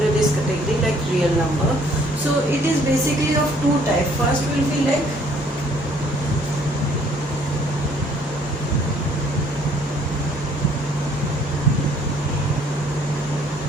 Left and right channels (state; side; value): normal; both; correlation 0.61